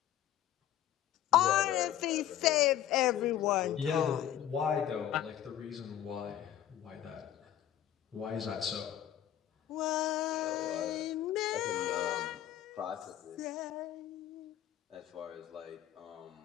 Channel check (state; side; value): quieter; right; 11.6 dB